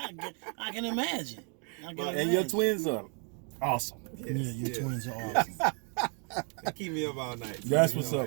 can imagine. And your twins are awesome. Yes, your twins are awesome. They keep me up all night. That's what's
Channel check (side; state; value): left; quieter; 38.8 dB